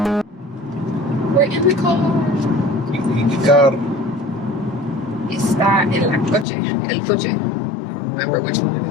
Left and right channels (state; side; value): drops out; right; at 6.5 s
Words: in the car. In the car. Está en la coche. El coche. Remember which one